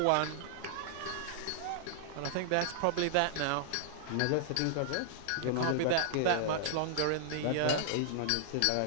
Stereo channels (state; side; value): different; both; correlation -0.01